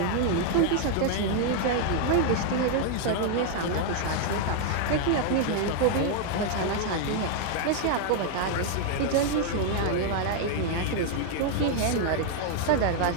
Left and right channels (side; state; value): both; different; correlation 0.00